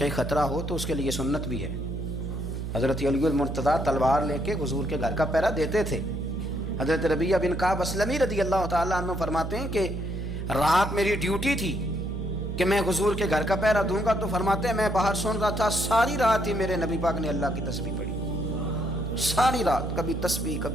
خطرہ ہو تو اس کے لیے سنت بھی ہے۔ حضرت علی المرتضیٰ تلوار لے کے حضور کے گھر کا پہرا دیتے تھے۔ حضرت ربیعہ بن کعب اسلمی رضی اللہ تعالیٰ عنہ فرماتے ہیں کہ رات میری ڈیوٹی تھی کہ میں حضور کے گھر کا پہرا دوں گا، تو فرماتے ہیں میں باہر سن رہا تھا، ساری رات ہی میرے نبی پاک نے اللہ کی تسبیح پڑھی، ساری رات، کبھی تسبیح،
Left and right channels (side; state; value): right; noise; hum, 5 dB below the sound